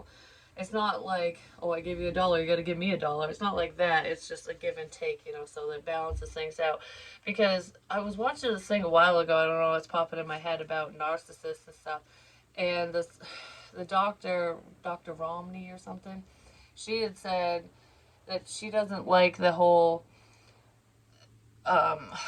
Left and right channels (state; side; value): identical; both; correlation 1.00